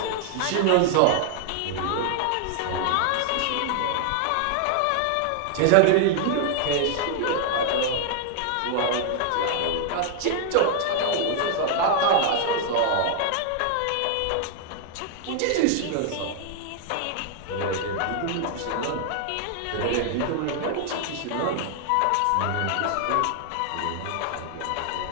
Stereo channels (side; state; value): both; different; correlation 0.00